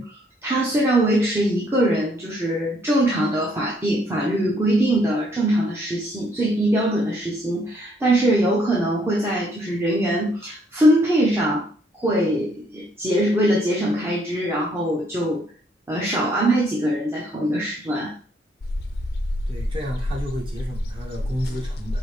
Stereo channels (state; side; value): normal; both; correlation 0.68